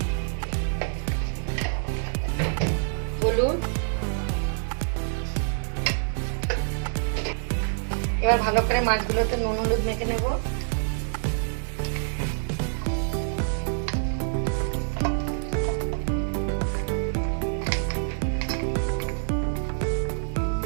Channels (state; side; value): silent; left; 61 dB below the other